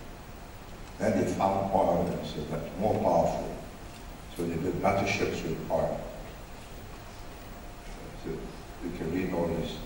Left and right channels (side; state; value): both; identical; correlation 1.00